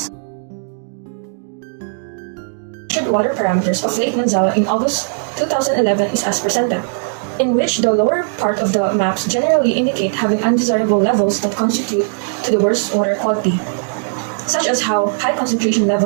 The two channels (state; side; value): silent; left; digital silence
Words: Water parameters of Lake Manzala in August 2011 is as presented, in which the lower part of the maps generally indicate having undesirable levels that constitute to the worst water quality, such as how high concentration